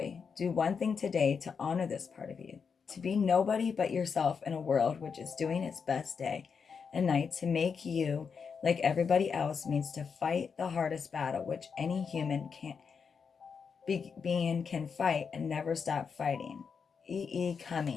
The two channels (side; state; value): right; quieter; 6.0 dB